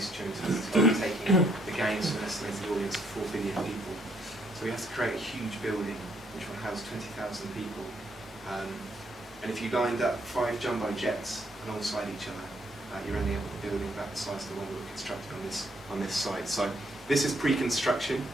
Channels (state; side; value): normal; both; correlation 0.70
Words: during 2012, taking the games to an estimated audience of 4 billion people. So we have to create a huge building which will house 20,000 people. And if you lined up 5 jumbo jets alongside each other, you're ending up with a building about the size of the one we were constructing on this site. So this is pre-construction